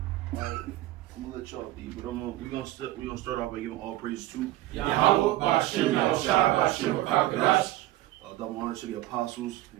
Alright, I'm gonna let y'all be, but we're gonna start off by giving all praise to Yahweh, Bashem, Yahushua, Bashem, Kakadash. double honor to the apostles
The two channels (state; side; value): quieter; left; 16.3 dB